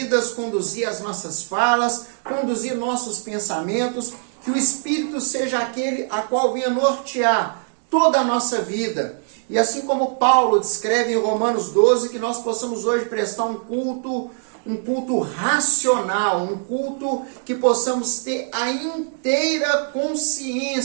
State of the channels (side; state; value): left; silent; 64 dB below the other